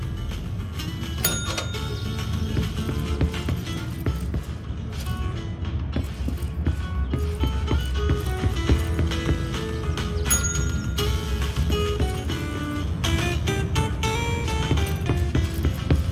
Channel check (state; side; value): identical; both; correlation 1.00